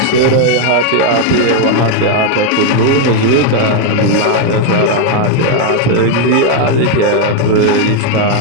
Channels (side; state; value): both; different; correlation 0.01